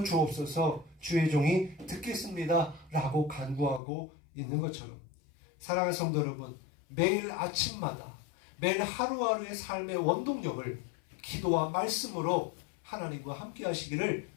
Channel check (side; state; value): right; drops out; at 3.8 s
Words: 주옵소서, 주의 종이 듣겠습니다 라고 간구하고 있는 것처럼, 사랑하는 성도 여러분, 매일 아침마다 매일 하루하루의 삶의 원동력을 기도와 말씀으로 하나님과 함께 하시기를